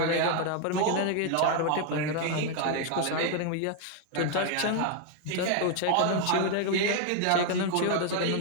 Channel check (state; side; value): different; both; correlation 0.01